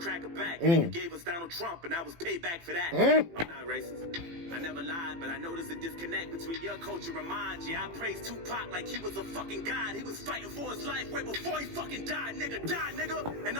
back. And you gave us Donald Trump, and I was payback for that. I'm not racist. I never lied, but I noticed a disconnect between your culture and mine. Yeah, I praised Tupac like he was a fucking god. He was fighting for his life way before he fucking died, nigga. And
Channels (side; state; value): left; late; 18 ms